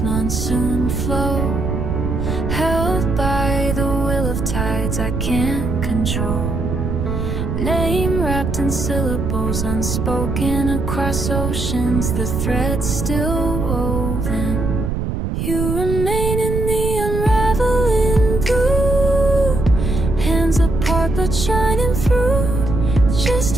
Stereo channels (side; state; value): right; noise; rumble, 2 dB below the sound